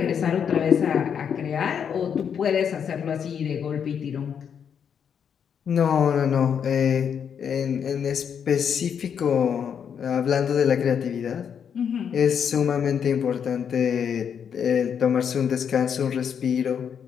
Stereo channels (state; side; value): quieter; right; 7.7 dB